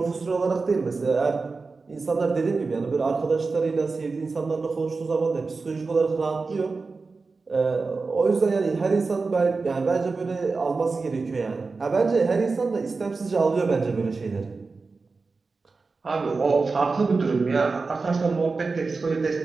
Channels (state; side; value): quieter; left; 4.2 dB